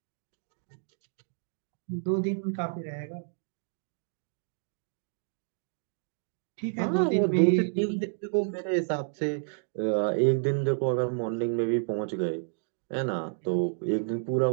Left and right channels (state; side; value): silent; left; digital silence